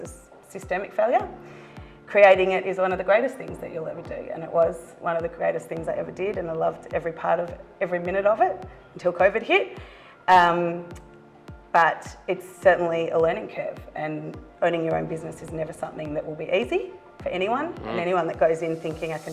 a systemic failure. Creating it is one of the greatest things that you'll ever do, and it was one of the greatest things I ever did, and I loved every minute of it until COVID hit. But it's certainly a learning curve, and owning your own business is never something that will be easy for anyone, and anyone that goes in thinking I can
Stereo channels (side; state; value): both; identical; correlation 1.00